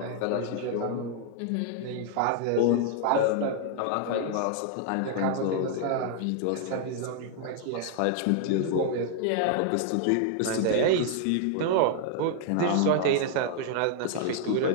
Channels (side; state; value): both; different; correlation 0.00